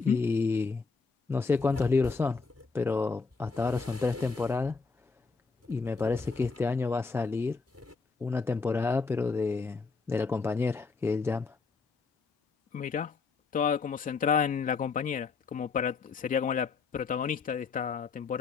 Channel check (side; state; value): right; quieter; 4.6 dB